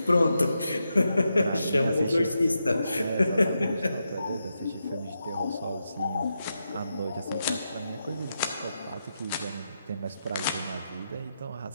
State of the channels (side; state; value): both; inverted; correlation -0.86